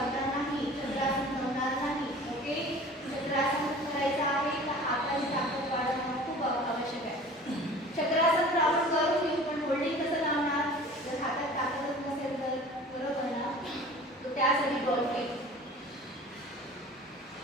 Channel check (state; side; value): normal; both; correlation 0.43